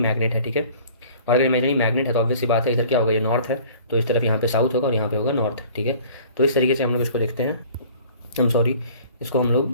है। ठीक है, और अगर इमेजिनरी मैग्नेट है तो ऑब्वियस सी बात है, इधर क्या होगा, ये नॉर्थ है तो इस तरफ यहाँ पे साउथ होगा और यहाँ पे होगा नॉर्थ। ठीक है, तो इस तरीके से हम लोग इसको देखते हैं। इसको हम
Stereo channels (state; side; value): inverted; both; correlation -0.50